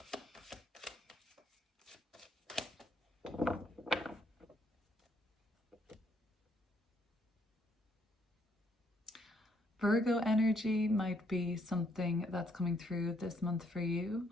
Virgo energy might be something that's coming through this month for you.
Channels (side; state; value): both; normal; correlation 0.70